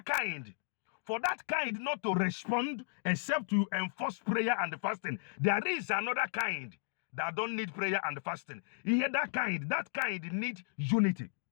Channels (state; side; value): silent; right; digital silence